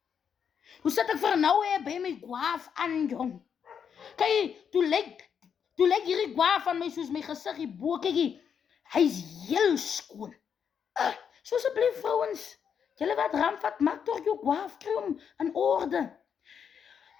hoe sit ek vir nou by my gwaaf aan, jong. Kyk, toe lyk hierdie gwaaf van my soos my gesig hierbo, kyk, hy is heel skoon. So asseblief vrouens, julle wat ramvat, maak toch jou gwaaf, kry hom in orde.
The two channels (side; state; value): right; quieter; 7.4 dB